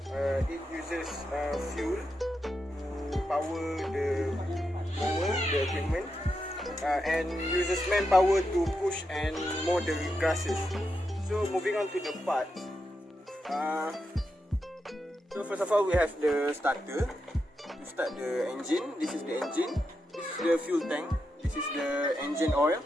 It uses fuel to power the mower, the equipment, and uses manpower to push and mow the grasses. So moving on to the parts. So first of all, we have the starter to start the engine. This is the engine. This is the fuel tank. This is the engine oil.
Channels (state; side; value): normal; both; correlation 0.86